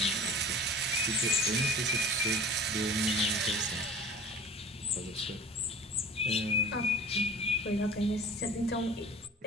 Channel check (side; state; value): both; normal; correlation 0.41